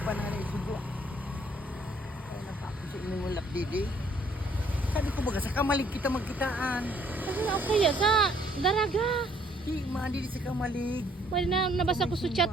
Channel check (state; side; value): normal; both; correlation 0.64